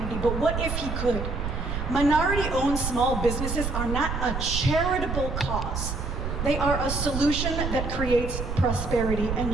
But what if he could? Minority-owned small businesses are not a charitable cause. They are a solution that creates prosperity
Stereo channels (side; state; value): right; noise; rumble, 3 dB below the sound